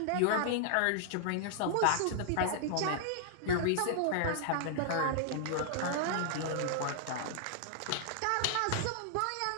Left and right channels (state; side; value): different; both; correlation -0.01